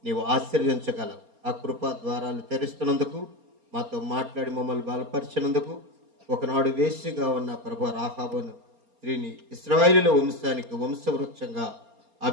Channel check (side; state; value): left; late; 4.3 ms